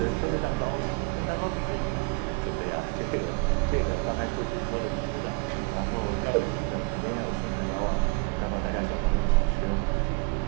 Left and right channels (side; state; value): left; quieter; 30.3 dB